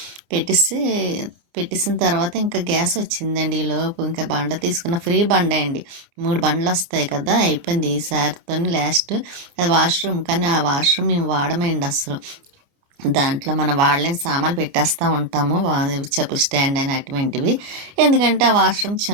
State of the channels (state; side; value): late; left; 30 ms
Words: పెట్టేసిన తర్వాత ఇంకా గ్యాస్ వచ్చిందండి. ఈలోపు ఇంకా బండ తీసుకున్న, ఫ్రీ బండ అండి. 3 బండ్లు వస్తాయి కదా, అయిపోయింది ఈసారితో లాస్ట్. అది వాష్రూమ్, కానీ ఆ వాష్రూమ్ మేము వాడమండి అసలు. దాంట్లో మనం వాడలేని సామాన్లు పెట్టేస్తూ ఉంటాము, చెప్పు స్టాండ్ అయిన అటువంటివి. ఎందుకంటే ఆ వాష్రూమ్